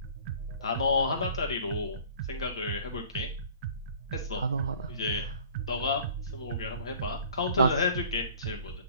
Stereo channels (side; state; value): both; inverted; correlation -0.49